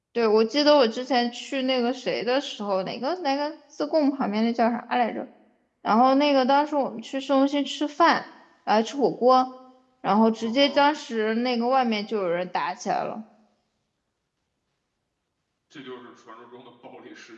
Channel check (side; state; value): both; identical; correlation 1.00